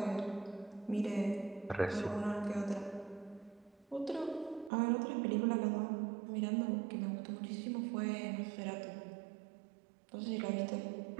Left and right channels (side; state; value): left; drops out; at 4.7 s